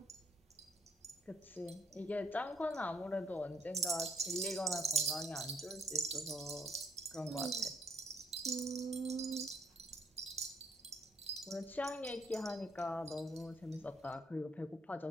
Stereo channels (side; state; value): both; normal; correlation 0.67